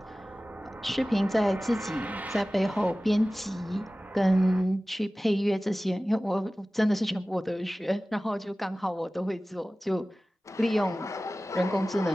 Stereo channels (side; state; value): both; normal; correlation 0.97